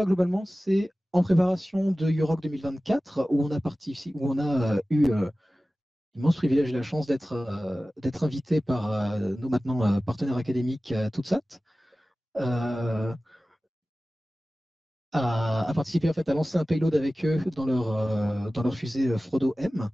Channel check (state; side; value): normal; both; correlation 0.96